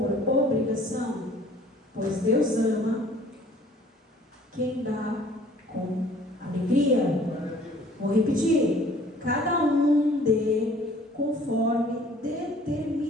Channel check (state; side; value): normal; both; correlation 0.54